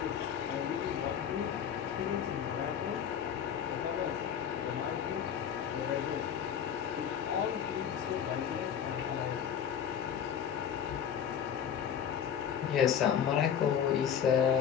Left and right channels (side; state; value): right; quieter; 8.5 dB